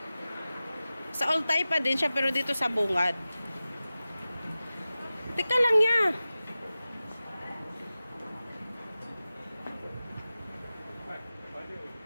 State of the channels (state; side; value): inverted; both; correlation -0.96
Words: Sa Old Taipa din siya pero dito sa Bungad. Teka lang ya.